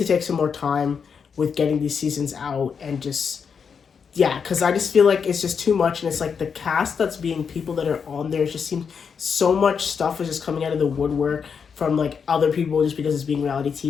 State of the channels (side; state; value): right; quieter; 6.4 dB